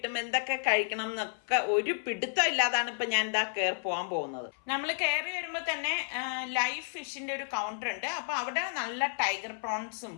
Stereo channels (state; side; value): silent; right; 57 dB below the other